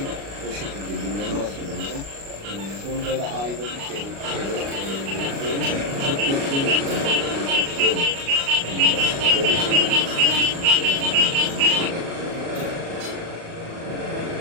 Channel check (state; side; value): late; left; 36 ms